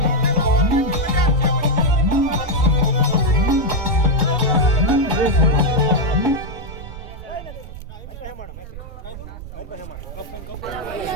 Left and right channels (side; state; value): right; noise; rumble, 12 dB below the sound